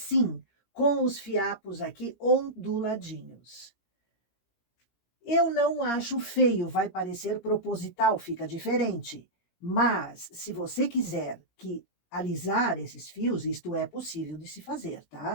com os fiapos aqui onduladinhos. Eu não acho feio, vai parecer proposital, fica diferente. Mas, se você quiser que alisar esses fios, isto é possível de se fazer,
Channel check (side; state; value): right; late; 17 ms